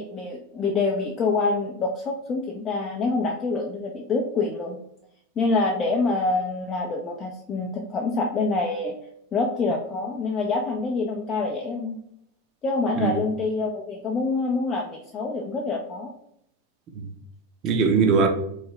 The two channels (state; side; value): normal; both; correlation 0.28